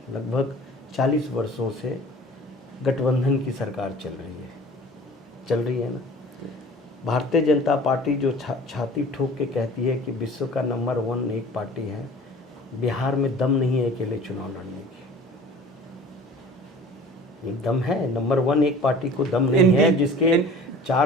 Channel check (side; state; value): both; normal; correlation 0.44